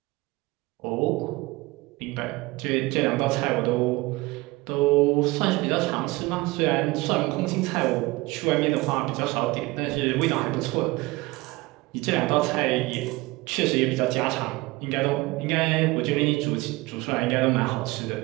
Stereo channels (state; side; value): quieter; left; 21.6 dB